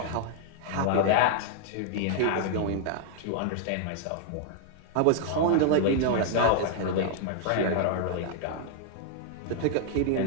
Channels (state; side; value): different; both; correlation 0.00